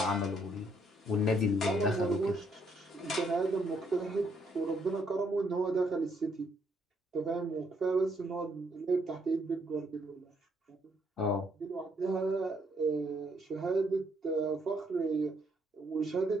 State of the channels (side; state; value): both; normal; correlation 0.72